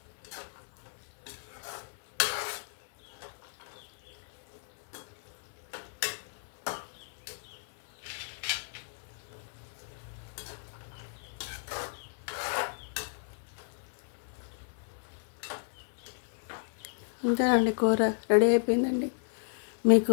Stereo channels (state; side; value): silent; right; 56 dB below the other